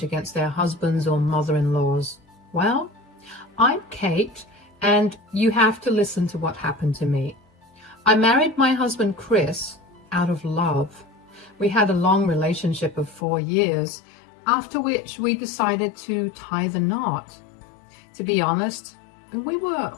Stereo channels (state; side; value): drops out; right; at 13.2 s